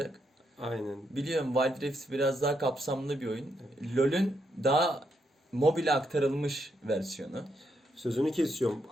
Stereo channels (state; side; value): normal; both; correlation 0.78